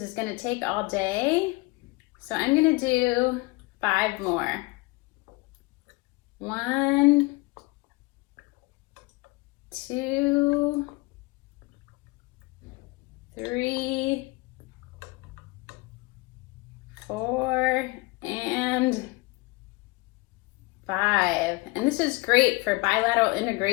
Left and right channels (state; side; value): quieter; right; 23.1 dB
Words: is going to take all day. So I'm going to do 5 more. 1, 2, 3, 4, and 5. And this is great for bilateral